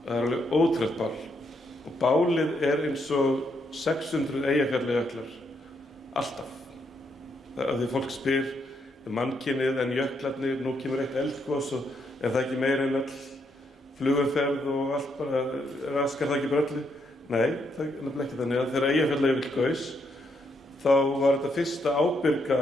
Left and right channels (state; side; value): normal; both; correlation 0.77